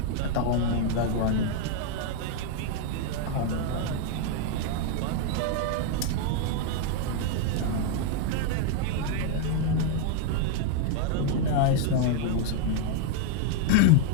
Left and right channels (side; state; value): both; different; correlation 0.00